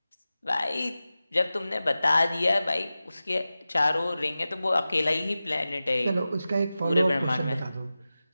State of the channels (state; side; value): inverted; both; correlation -0.95